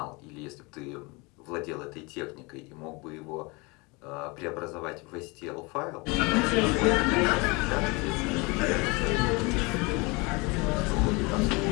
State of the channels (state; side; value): quieter; right; 27.0 dB